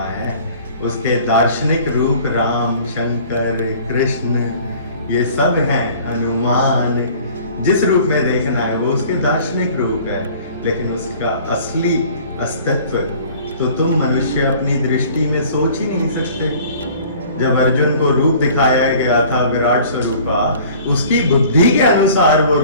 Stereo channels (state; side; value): inverted; both; correlation -0.49